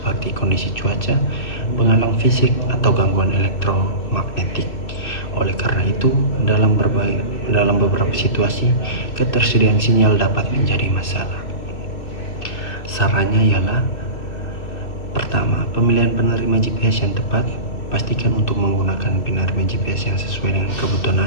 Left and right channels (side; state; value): right; late; 2.6 ms